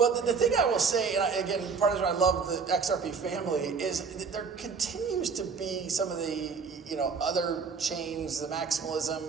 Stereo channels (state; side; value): quieter; left; 5.4 dB